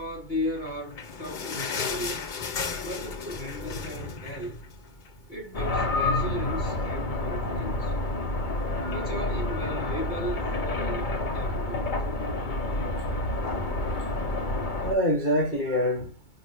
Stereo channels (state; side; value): late; right; 2.2 ms